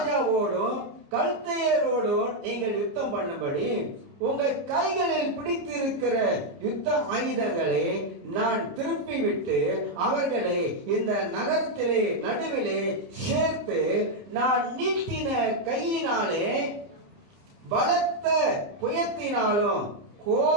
கல்தேயரோடும் நீங்கள் யுத்தம் பண்ணும்படி உங்கள் கைகளில் பிடித்திருக்கிற யுத்த ஆயுதங்களை நான் திருப்பி விட்டு அவர்களை இந்த நகரத்திலே நடுவிலே சேர்த்து நான் நீட்டின கையினாலே பலத்த புயத்தினாலும்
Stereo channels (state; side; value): late; left; 29 ms